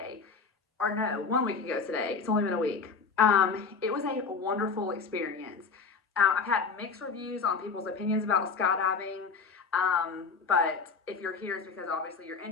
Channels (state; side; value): quieter; right; 5.0 dB